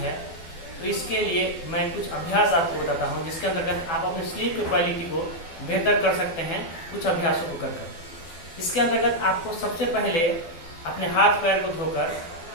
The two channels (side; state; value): right; late; 12 ms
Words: है तो इसके लिए मैं कुछ अभ्यास आपको बताता हूँ, जिसके अंतर्गत आप अपनी स्लीप की क्वालिटी को बेहतर कर सकते हैं कुछ अभ्यासों को कर। इसके अंतर्गत आपको सबसे पहले अपने हाथ पैर को धोकर